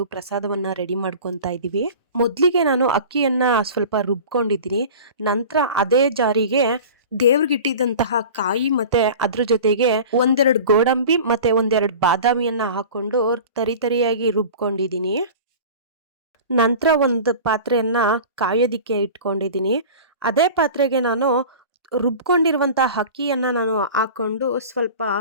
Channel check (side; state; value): both; inverted; correlation -0.37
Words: ಪ್ರಸಾದವನ್ನ ರೆಡಿ ಮಾಡ್ಕೊತಾ ಇದೀವಿ. ಮೊದಲಿಗೆ ನಾನು ಅಕ್ಕಿಯನ್ನ ಸ್ವಲ್ಪ ರುಬ್ಕೊಂಡಿದ್ದೀನಿ. ನಂತರ ಅದೇ ಜಾರಿಗೆ ದೇವ್ರಿಗಿಟ್ಟಿದ್ದಂತಹ ಕಾಯಿ ಮತ್ತೆ ಅದ್ರ ಜೊತೆಗೆ ಒಂದೆರಡು ಗೋಡಂಬಿ ಮತ್ತೆ ಒಂದೆರಡು ಬಾದಾಮಿಯನ್ನ ಹಾಕೊಂಡು ತರಿಯಾಗಿ ರುಬ್ಕೊಂಡಿದ್ದೀನಿ. ನಂತರ ಒಂದು ಪಾತ್ರೆಯನ್ನ ಕಾಯೋದಿಕ್ಕೆ ಇಟ್ಕೊಂಡಿದ್ದೀನಿ. ಅದೇ ಪಾತ್ರೆಗೆ ನಾನು ರುಬ್ಕೊಂಡಿರುವಂತಹ ಅಕ್ಕಿಯನ್ನ ನಾನು ಹಾಕೊಂಡು ಸ್ವಲ್ಪ